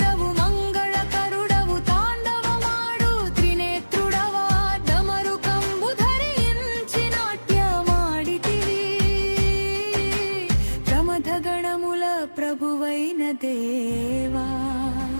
మంగళకరుడవు తాండవమాడు త్రినేత్రుడవా, డమరుకంబు ధరించి నాట్యమాడితివి। ప్రమథ గణముల ప్రభువైన దేవా,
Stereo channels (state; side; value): inverted; both; correlation -1.00